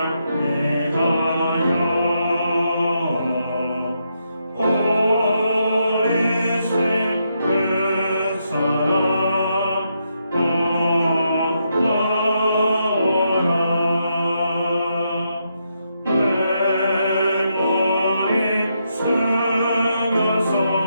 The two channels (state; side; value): inverted; both; correlation -0.80